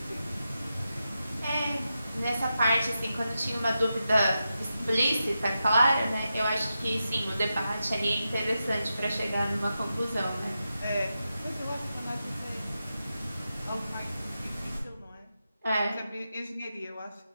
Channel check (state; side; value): inverted; both; correlation -0.89